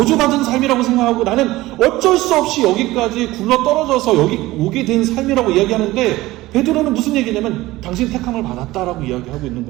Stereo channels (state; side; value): quieter; left; 18.1 dB